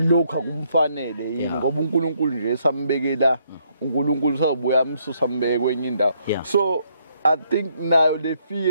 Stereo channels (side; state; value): both; inverted; correlation -0.71